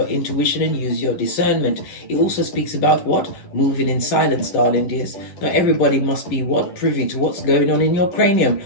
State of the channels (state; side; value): late; right; 11 ms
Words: intuition and use your discernment. It also speaks about what? Moving in silence, darling dears. Not everybody must be what? Privy to what's going on in your cranium